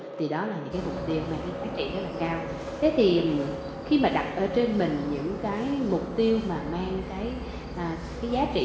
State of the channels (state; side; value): identical; both; correlation 1.00